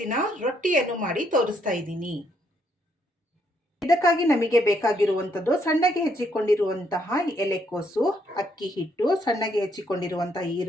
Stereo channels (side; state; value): both; normal; correlation 0.72